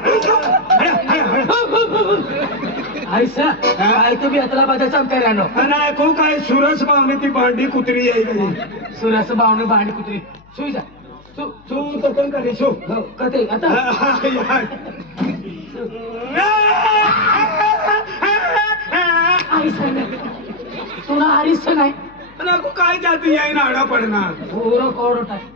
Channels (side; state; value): left; noise; hum, 27 dB below the sound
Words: ऐसा काय तुम्ही अतला बाजाचा करानो आणि को काय सुरस बावणी ती भांडी कुत्री आहे सुरस बावणी भांडी कुत्री सुई जा तू तकन करे शो कते आता तुला हरीच नाही नको काय जाती याय नाडा पडणार पोरं कोरडं टाक.